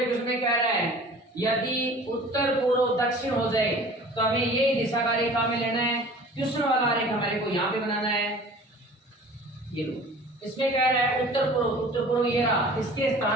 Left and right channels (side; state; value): both; normal; correlation 0.45